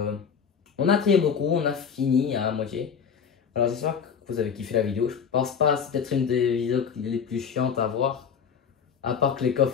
On a trié beaucoup, on a fini à moitié. Alors j'espère que que vous avez kiffé la vidéo. Je pense pas, c'est peut-être une des vidéos les plus chiantes à voir. À part que les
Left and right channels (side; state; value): right; quieter; 6.9 dB